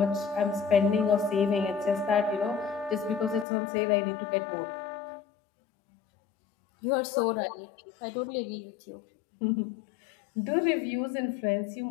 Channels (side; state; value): right; drops out; at 3.5 s